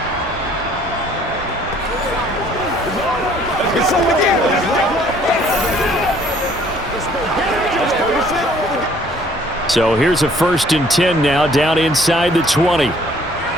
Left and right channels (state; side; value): normal; both; correlation 0.58